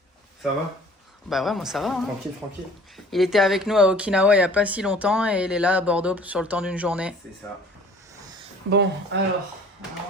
Ça va? Bah ouais, moi ça va. Hein. Tranquille, tranquille. Il était avec nous à Okinawa il n'y a pas si longtemps et il est là à Bordeaux sur le temps d'une journée. C'est ça. Bon, alors, on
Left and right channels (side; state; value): both; normal; correlation 0.50